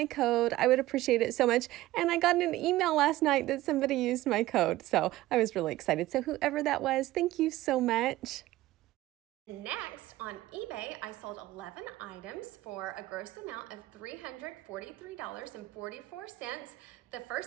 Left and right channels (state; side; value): quieter; left; 16.5 dB